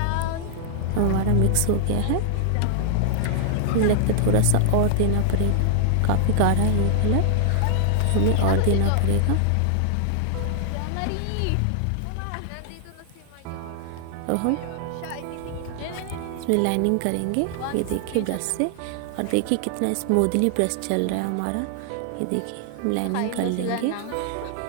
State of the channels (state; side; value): different; both; correlation -0.01